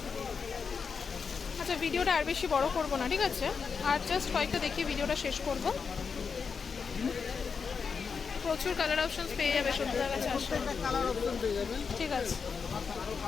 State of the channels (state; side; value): quieter; right; 5.7 dB